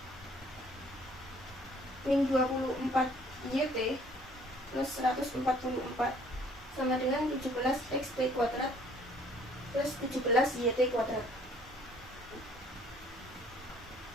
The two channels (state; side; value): normal; both; correlation 0.59